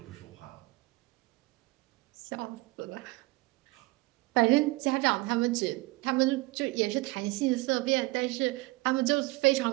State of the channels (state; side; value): quieter; left; 22.2 dB